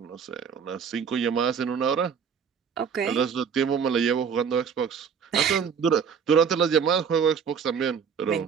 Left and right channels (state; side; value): quieter; left; 6.8 dB